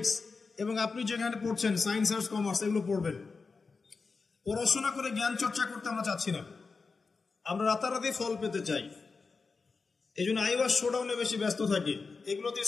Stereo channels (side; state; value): right; quieter; 4.5 dB